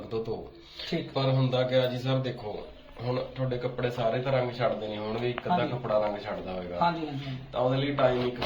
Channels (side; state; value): both; identical; correlation 1.00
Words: ਤੋਂ ਧੋ। ਠੀਕ ਪਰ ਹੁੰਦਾ ਕਿਆ ਜੀ ਸਰ, ਦੇਖੋ ਹੁਣ ਤੁਹਾਡੇ ਕੱਪੜੇ ਸਾਰੇ ਤਾਂ ਰੰਗ ਛੱਡਦੇ ਨਹੀਂ ਹੋਣਗੇ, ਇੱਕ ਅੱਧਾ ਹਾਂਜੀ। ਕੱਪੜਾ ਰੰਗ ਛੱਡਦਾ ਹੋਵੇਗਾ, ਹਾਂਜੀ ਹਾਂਜੀ ਹਾਂਜੀ। ਤਾਂ ਉਹਦੇ ਲਈ ਟਾਈਮ 1